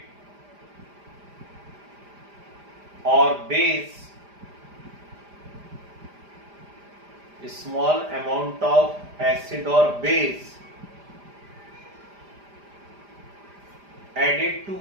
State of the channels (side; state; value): left; late; 5.0 ms